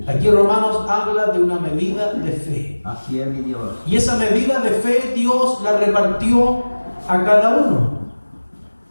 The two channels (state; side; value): inverted; both; correlation -1.00